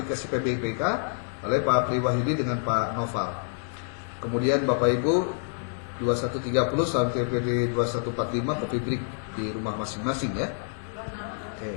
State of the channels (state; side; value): silent; right; 60 dB below the other